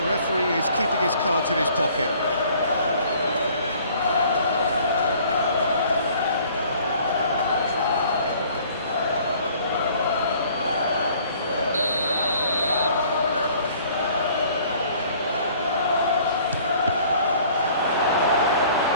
referee is keeping his cards in his pocket.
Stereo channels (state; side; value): inverted; both; correlation -0.55